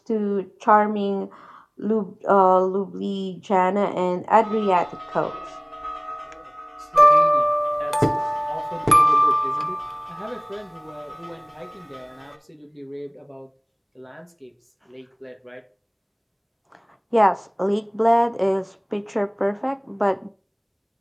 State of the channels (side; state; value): both; identical; correlation 1.00